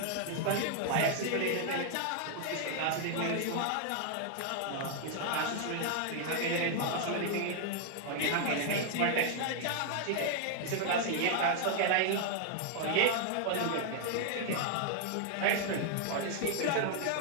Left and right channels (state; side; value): different; both; correlation 0.00